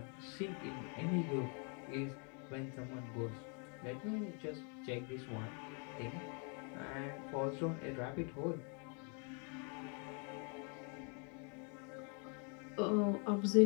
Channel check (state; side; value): quieter; right; 38.0 dB